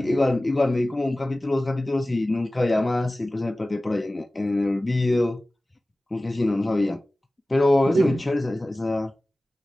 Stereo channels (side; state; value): both; normal; correlation 0.97